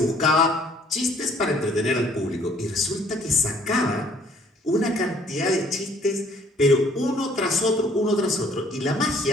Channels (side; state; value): both; normal; correlation 0.60